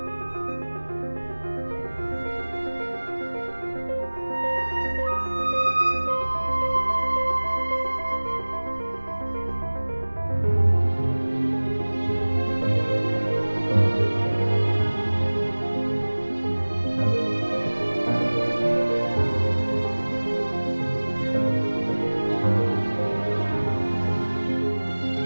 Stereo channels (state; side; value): inverted; both; correlation -1.00